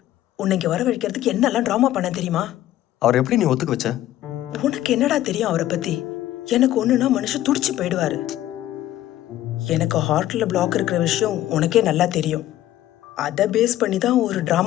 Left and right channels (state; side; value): quieter; right; 13.7 dB